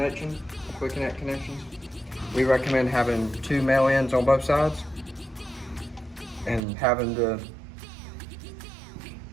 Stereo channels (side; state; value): left; drops out; at 6.6 s